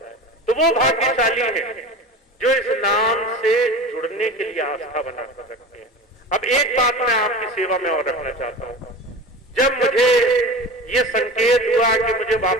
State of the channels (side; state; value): both; normal; correlation 0.33